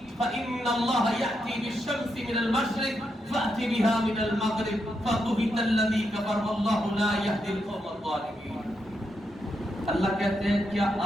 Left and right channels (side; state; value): both; normal; correlation 0.83